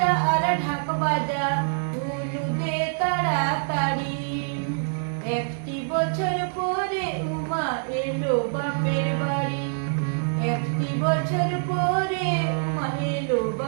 আর ঢাক বাজা, উলু দে তাড়াতাড়ি। একটি বছর পরে উমা এলো বাপের বাড়ি। একটি বছর পরে উমা এলো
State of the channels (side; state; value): left; silent; digital silence